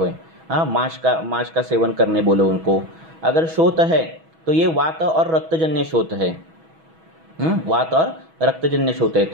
हाँ, माश का सेवन करने बोलो उनको। अगर शोथ है तो ये वात और रक्तजन्य शोथ है। वात और रक्तजन्य शोथ है,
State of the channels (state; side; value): late; left; 6.2 ms